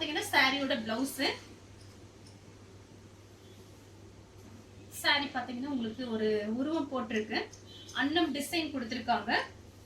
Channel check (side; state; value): both; identical; correlation 1.00